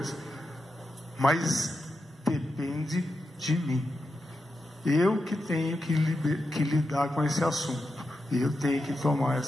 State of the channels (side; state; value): both; normal; correlation 0.88